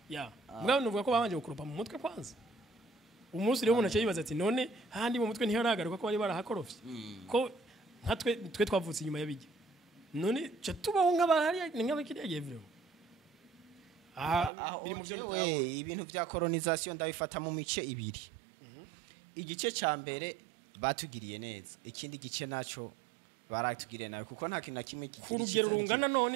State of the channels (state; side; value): drops out; left; at 14.5 s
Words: ya mbwa nuvuga ko babanje gukurupa mu mutwe kwanza umunsi rero umuntu aciye yibaza ati none handi mu mutwe ntiharagaruka ko bari barahakorofye ko twe twavutse inyuma y'abijya none cyo tubaho nk'abahari nk'abakiriya vyo biri mu byo ibintu bya colonization ndabifata mu mice ibiri igice ca mbere batugiriye neza ikindi gice naco baratugiriye nawe kuko nta kintu na kimwe ku rugero rungana